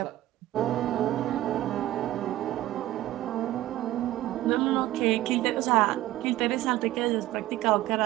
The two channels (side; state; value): left; quieter; 15.1 dB